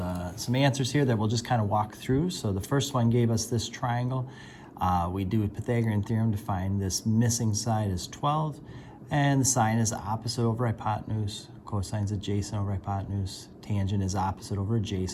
some answers here that we'll just kind of walk through. So the first one gave us this triangle. We do a Pythagorean theorem to find this missing side is 12, and the sine is opposite over hypotenuse, cosine is adjacent over hypotenuse, tangent is opposite over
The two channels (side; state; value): both; identical; correlation 1.00